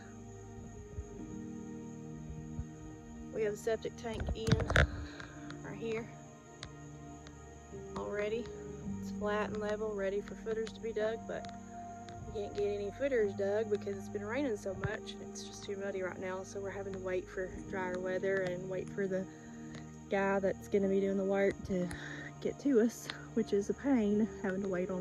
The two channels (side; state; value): both; identical; correlation 1.00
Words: We have a septic tank in right here already. It's flat and level, ready for footers to be dug, but we can't get any footers dug because it's been raining so much. It's just too muddy right now, so we're having to wait for drier weather and wait for the guy that's going to be doing the work to get to us, which is a pain having to wait